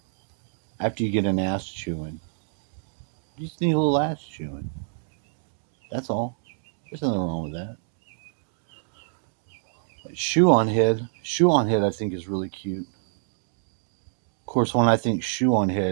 After you get an ass chewing, you just need a little ass chewing. That's all. There's nothing wrong with that. Shoe on head. Shoe on head, I think, is really cute. Of course, when I think shoe on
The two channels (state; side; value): silent; left; digital silence